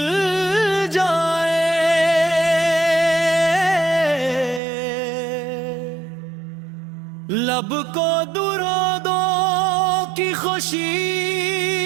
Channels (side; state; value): left; drops out; at 4.6 s